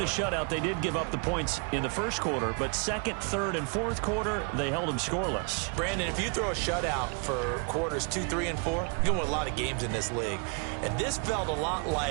a shutout. They did give up the points in the first quarter, but second, third, and fourth quarter, they held them scoreless. Brandon, if you throw a shutout for quarters 2, 3, and 4, you're going to win a lot of games in this league. And this felt a lot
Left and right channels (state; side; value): quieter; left; 37.0 dB